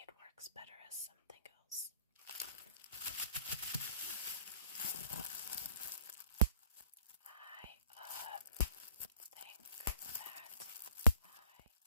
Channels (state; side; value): inverted; both; correlation -0.54